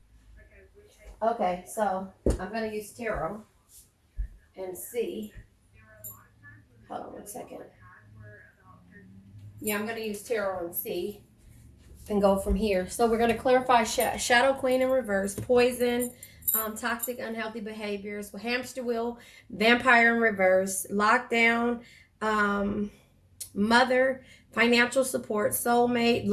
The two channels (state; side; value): identical; both; correlation 1.00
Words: Okay, so I'm going to use tarot and see. Hold on 1 second. Yeah, I'm going to use tarot and see and go from here. So we're going to clarify Shadow Queen in reverse, Poison, toxic, unhealthy behaviors, Hamster Wheel, Vampire in reverse, Lockdown, Mother, financial support, Soulmate,